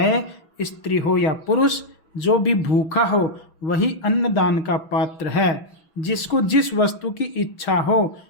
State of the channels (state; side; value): late; right; 6.1 ms